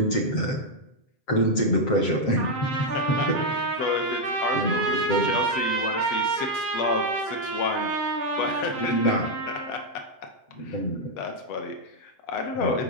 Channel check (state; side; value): late; right; 8.3 ms